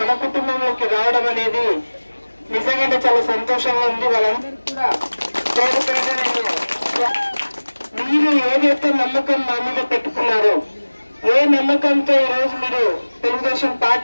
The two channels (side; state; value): both; inverted; correlation -1.00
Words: మన కుటుంబంలోకి రావడం అనేది నిజంగా చాలా సంతోషంగా ఉంది. వాళ్ళందరూ కూడా చేరికగా మీరు ఏదైతే నమ్మకం మా మీద పెట్టుకున్నారో, ఏ నమ్మకంతో ఈరోజు మీరు తెలుగుదేశం